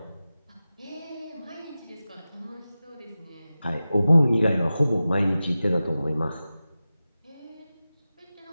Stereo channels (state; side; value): inverted; both; correlation -0.95